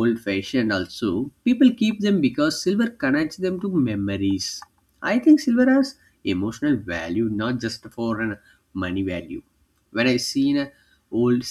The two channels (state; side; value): identical; both; correlation 1.00